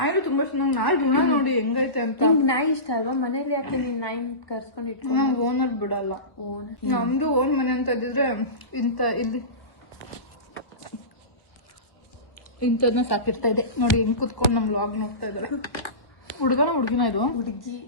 ತುಂಬಾ ಇಷ್ಟ. ನಂಗೆ ನಾಯಿ ಋಣ ನೋಡಿ ಹೆಂಗೈತೆ ಅಂತ. ನಿಮ್ಗೆ ನಾಯಿ ಇಷ್ಟ ಅಲ್ವಾ? ಮನೇಲಿ ಯಾಕೆ ನೀನ್ ನಾಯಿ ಕರ್ಸ್ಕೊಂಡು ಇಟ್ಕೊಂಡು? ನಮ್ ಓನರ್ ಬಿಡಲ್ಲ. ನಮ್ದು ಓನ್ ಮನೆ ಅಂತ ಇದ್ದಿದ್ರೆ ಇಂಥದ್ನ ಸಾಕಿರ್ತಾ ಇದೆ. ನೋಡಿ ಹೆಂಗ್ ಕುತ್ಕೊಂಡು ನಮ್ ವ್ಲಾಗ್ ನೋಡ್ತಾ ಇದ್ದಾರೆ. ಹುಡುಗಿನ ಇದು ಹುಡುಗಿ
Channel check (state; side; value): late; right; 1.2 ms